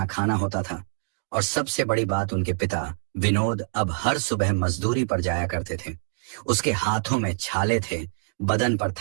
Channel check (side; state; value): left; silent; digital silence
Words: खाना होता था, और सबसे बड़ी बात, उनके पिता विनोद अब हर सुबह मजदूरी पर जाया करते थे। उसके हाथों में छाले थे, बदन पर